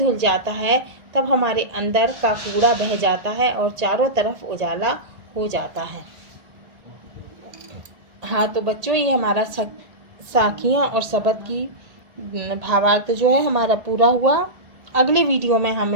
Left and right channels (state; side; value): late; left; 1.8 ms